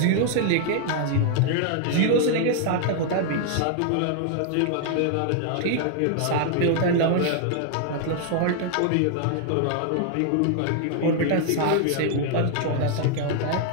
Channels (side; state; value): both; different; correlation 0.00